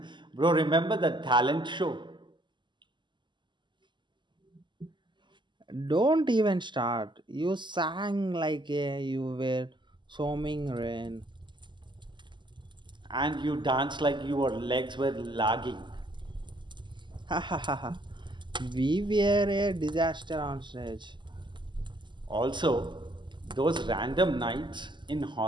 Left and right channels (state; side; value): late; left; 0.22 ms